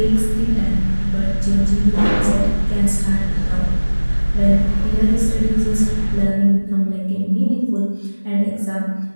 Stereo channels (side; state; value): both; inverted; correlation -1.00